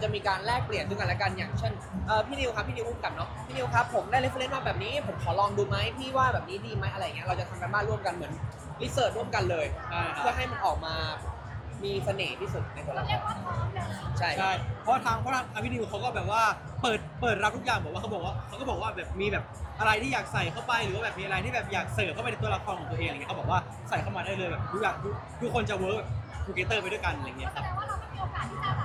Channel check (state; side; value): identical; both; correlation 1.00